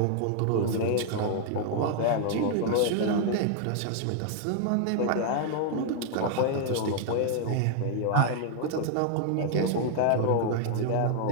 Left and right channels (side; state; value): both; different; correlation 0.00